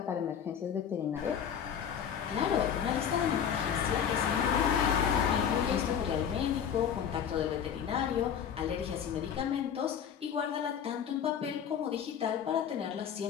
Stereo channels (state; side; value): quieter; right; 8.2 dB